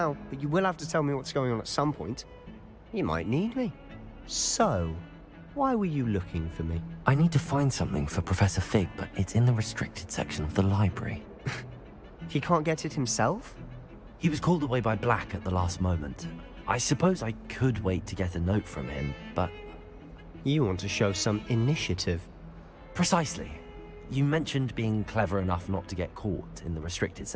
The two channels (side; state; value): both; identical; correlation 1.00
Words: but you will have to tell me what's going on at some point. You might need me. So, why were you looking for me? I need to find something for Professor Fig, but it's in the restricted section of the library. He can't get it himself? He was called away by Black at the last moment. I suppose I could wait to get a note from him, but... You want to show some initiative. Precisely. You mentioned being clever enough not to get caught in the restricted